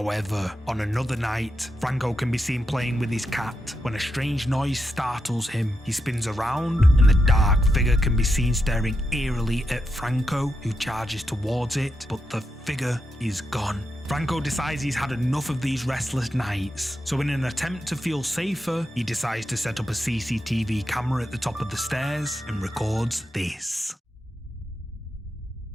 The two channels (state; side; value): normal; both; correlation 0.85